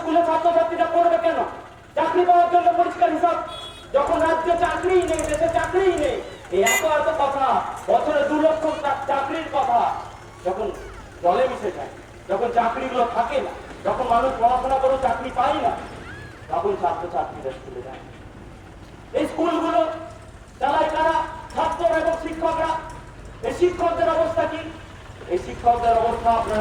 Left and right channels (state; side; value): identical; both; correlation 1.00